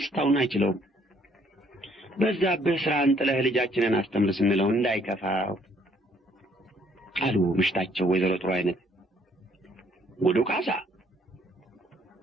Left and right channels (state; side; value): normal; both; correlation 0.64